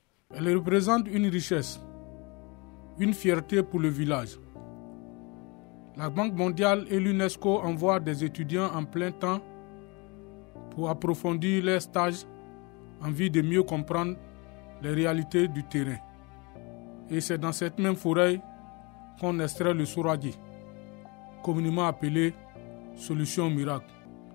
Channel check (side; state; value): right; quieter; 28.2 dB